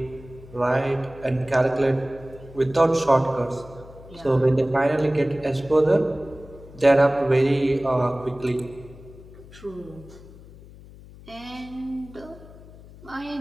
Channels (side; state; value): left; noise; hum, 19 dB below the sound